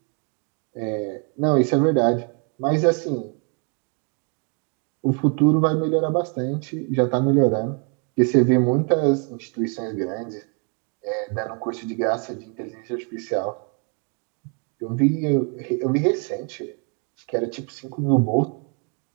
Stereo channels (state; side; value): quieter; left; 37.2 dB